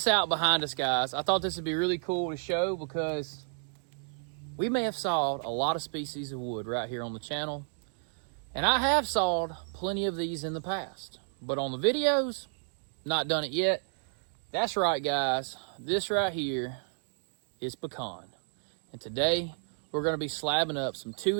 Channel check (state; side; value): silent; left; digital silence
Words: out behind us, guys. I thought this would be really cool to show because we may have sawed a lot of species of wood right here on the channel, and I have sawed plenty of these in the past. But on the videos, not done it yet. That's right, guys. This right here is pecan. And today, we're going to be slabbing up some